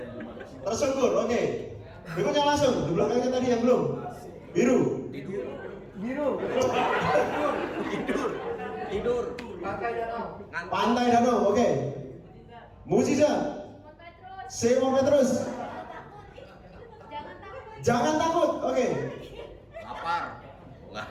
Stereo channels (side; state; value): both; identical; correlation 1.00